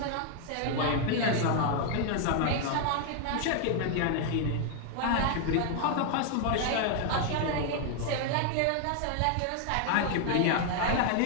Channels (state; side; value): different; both; correlation 0.00